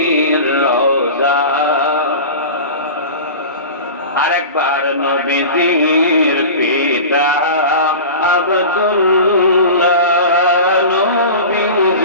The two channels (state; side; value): inverted; both; correlation -0.33